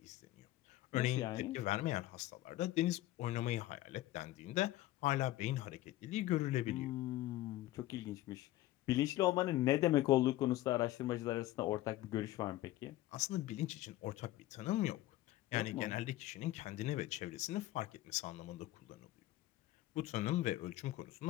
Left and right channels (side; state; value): right; quieter; 15.8 dB